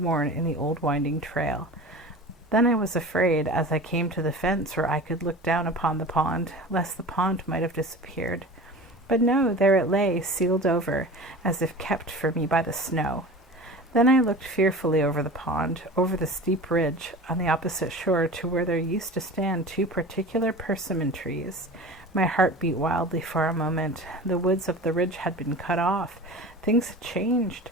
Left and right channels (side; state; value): both; normal; correlation 0.36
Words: in the old winding trail. Then I was afraid, as I came to the fence where I could look down upon the pond, lest the pond might have disappeared. But no, there it lay, sealed over, as if kept for me by the snow. Then I looked fearfully over the pond, over the steep ridge on the opposite shore to where there used to stand 2 particular persimmon trees. My heart beat wildly for a moment. The woods of the ridge had been cut off. Things had changed.